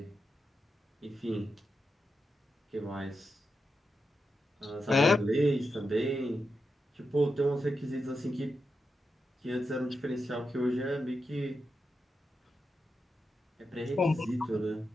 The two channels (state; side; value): normal; both; correlation 0.87